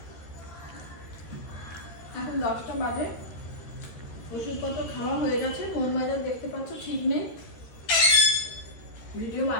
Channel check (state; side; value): late; right; 13 ms